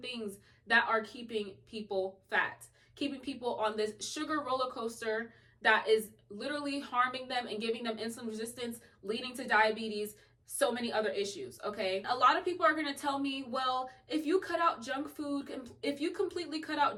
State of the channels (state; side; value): identical; both; correlation 1.00